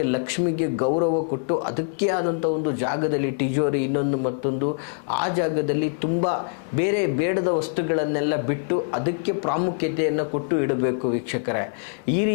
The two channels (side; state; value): right; silent; digital silence